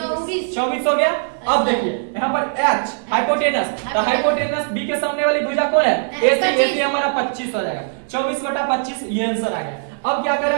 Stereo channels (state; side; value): silent; left; 66 dB below the other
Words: हो गया। अब देखिए यहाँ पर H हाइपोटेनस, तो हाइपोटेनस B के सामने वाली भुजा कौन है AC हमारा 25 हो जाएगा, 24 बटा 25 ये आंसर आ गया। अब क्या कर